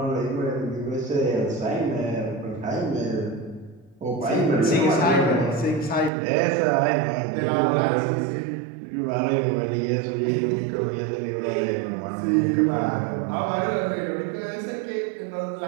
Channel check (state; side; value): drops out; left; at 6.1 s